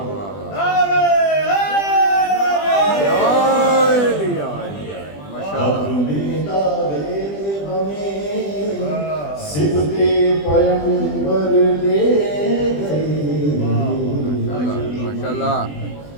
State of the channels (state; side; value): late; right; 20 ms